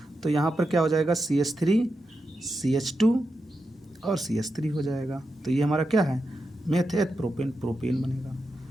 तो यहाँ पर क्या हो जाएगा? CH3, CH2 और CH3 हो जाएगा। तो ये हमारा क्या है? मेथेट प्रोपेन, प्रोपेन बनेगा।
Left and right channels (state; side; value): normal; both; correlation 0.88